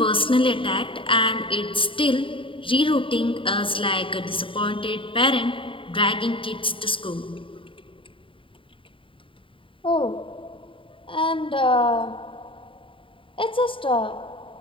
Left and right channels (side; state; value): right; late; 0.25 ms